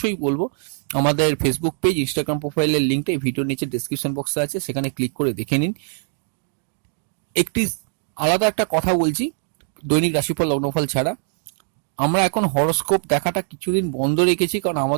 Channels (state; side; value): silent; left; 55 dB below the other